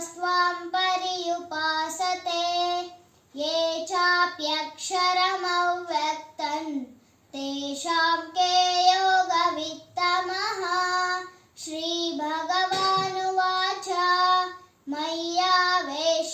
ಪರ್ಯುಪಾಸತೆ ಯೇ ಚಾಪ್ಯಕ್ಷರಮವ್ಯಕ್ತಂ ತೇಷಾಂ ಕೇ ಯೋಗವಿತ್ತಮಃ. ಶ್ರೀಭಗವಾನುವಾಚ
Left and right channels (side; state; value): both; identical; correlation 1.00